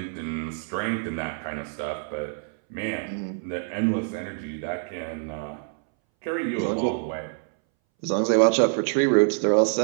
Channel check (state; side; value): silent; left; 61 dB below the other